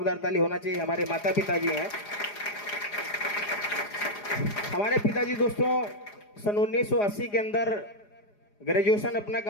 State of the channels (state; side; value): late; right; 4.9 ms